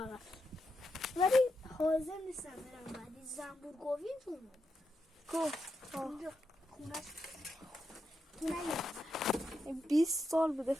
ولی حاضر نیستم برم بعدی زنبورگوی تو کو اونجا خونش 20 سال بوده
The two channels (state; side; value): normal; both; correlation 0.85